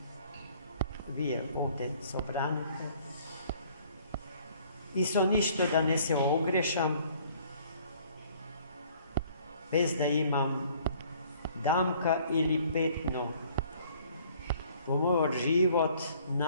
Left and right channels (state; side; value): inverted; both; correlation -0.57